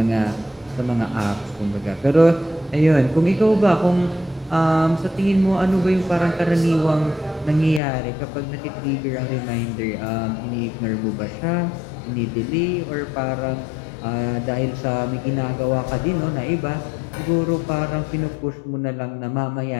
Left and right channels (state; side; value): drops out; right; at 7.8 s